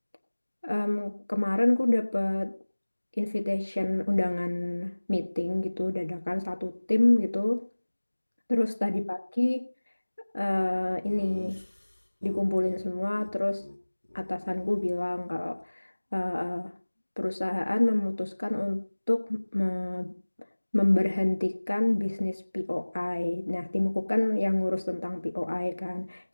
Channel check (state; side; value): inverted; both; correlation -1.00